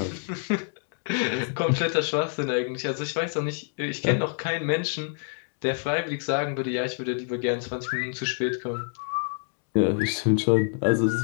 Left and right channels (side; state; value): right; silent; 60 dB below the other